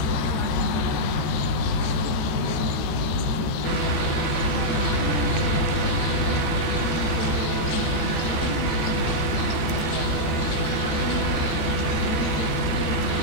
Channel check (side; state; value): right; late; 13 ms